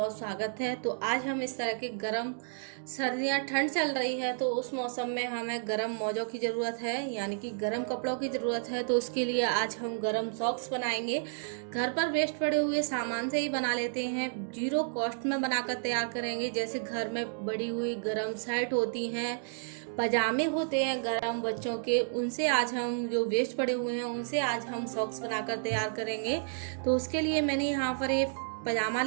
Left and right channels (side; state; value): left; silent; digital silence